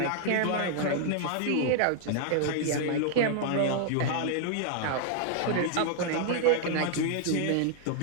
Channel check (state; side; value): different; both; correlation -0.01